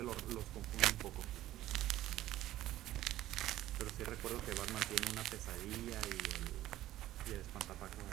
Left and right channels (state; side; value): quieter; left; 14.3 dB